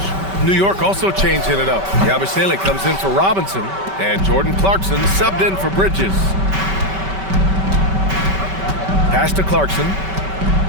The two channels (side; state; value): left; late; 5.2 ms